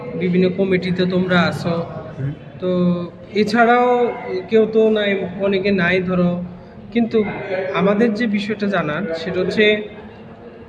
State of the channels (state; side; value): identical; both; correlation 1.00